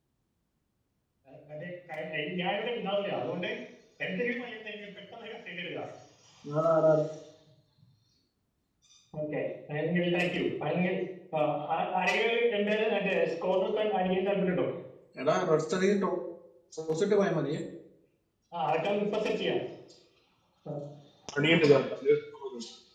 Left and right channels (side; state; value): both; identical; correlation 1.00